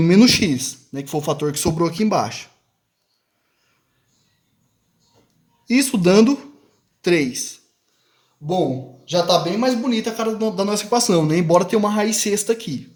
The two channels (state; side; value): identical; both; correlation 1.00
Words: x, né, que foi o fator que sobrou aqui embaixo. Isso dando 3. Bom, já está bem mais bonita a cara da nossa equação, né? Embora tenha uma raiz sexta aqui.